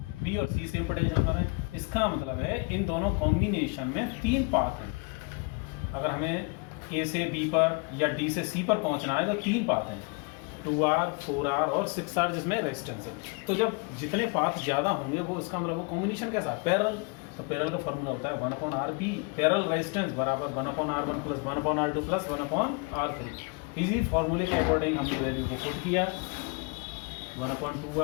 बी और सी सेम पोटेंशियल पर है। इसका मतलब है इन दोनों कॉम्बिनेशन में 3 पाथ हैं। अगर हमें ए से बी पर या डी से सी पर पहुंचना है तो 3 पाथ हैं, 2R, 4R और 6R जिसमें रेजिस्टेंस है। तो जब जितने पाथ ज़्यादा होंगे वो इसका मतलब वो कॉम्बिनेशन कैसा है? पैरेलल। तो पैरेलल का फॉर्मूला होता है 1/RB, पैरेलल रेजिस्टेंस बराबर 1/R1 + 1/R2 + 1/R3। इसी फॉर्मूले के अकॉर्डिंग हमने वैल्यू को पुट किया,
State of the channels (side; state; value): right; quieter; 31.9 dB